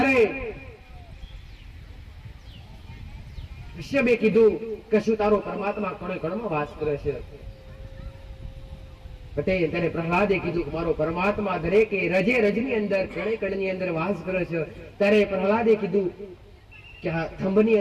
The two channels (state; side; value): identical; both; correlation 1.00